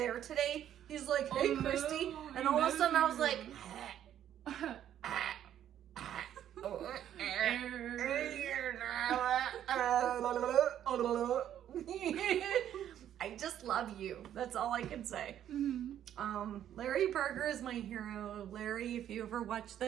today, he's like, "Hey, Christy," and all of a sudden I was like, I just love you. That's all I can say. Larry Berger is my hero. Larry, if you ever watch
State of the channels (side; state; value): left; quieter; 10.7 dB